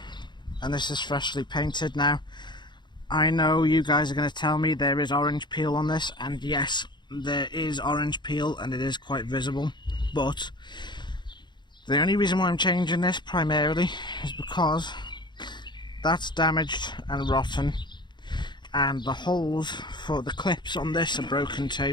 and this is freshly painted. Now, I know you guys are going to tell me there is orange peel on this, and yes, there is orange peel, and it is quite visible, but the only reason why I'm changing this primarily is because that's damaged and rotten, and the holes for the clips on this are broken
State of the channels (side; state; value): right; late; 0.22 ms